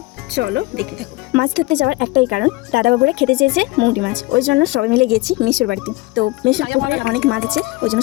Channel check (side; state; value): right; quieter; 21.2 dB